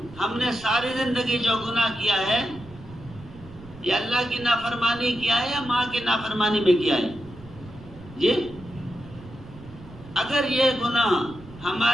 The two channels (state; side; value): noise; right; rumble, 18 dB below the sound